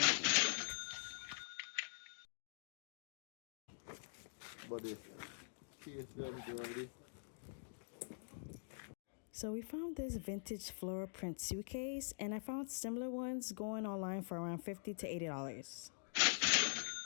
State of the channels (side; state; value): right; silent; digital silence